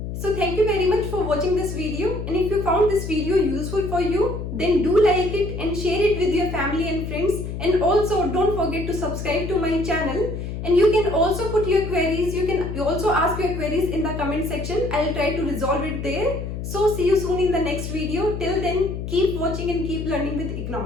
So thank you very much for watching this video, and if you found this video useful for you, then do like it and share it with your family and friends, and also don't forget to subscribe to my channel. And you can also put your queries, you can also ask your queries in the comment section. I'll try to resolve it there. So see you soon in the next video. Till then, keep watching and keep learning with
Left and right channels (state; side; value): noise; left; hum, 6 dB below the sound